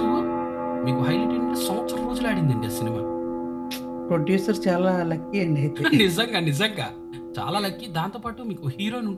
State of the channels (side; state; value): both; identical; correlation 1.00